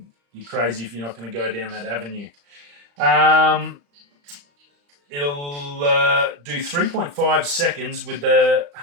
you're crazy if you're not going to go down that avenue. It'll do 3.5 seconds with the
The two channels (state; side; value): late; left; 35 ms